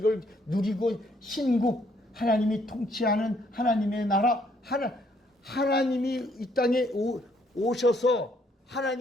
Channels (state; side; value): normal; both; correlation 0.68